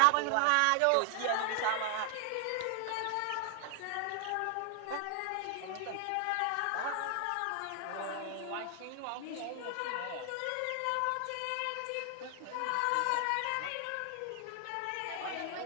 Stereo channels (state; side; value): different; both; correlation 0.00